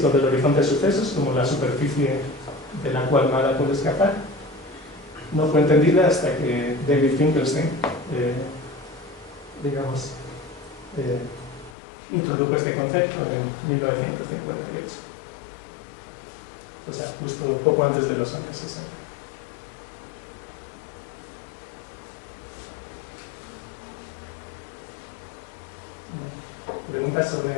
del horizonte de sucesos, como la superficie de la cual nada puede escapar, no fue entendida hasta que David Finkelstein introdujo este concepto en 1958. O sea, justo poco antes de los años 60. ¿Preguntas sobre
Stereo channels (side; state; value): right; drops out; at 11.8 s